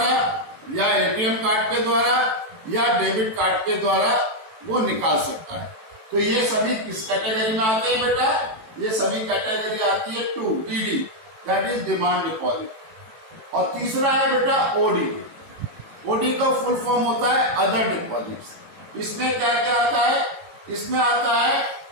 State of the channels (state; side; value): late; left; 18 ms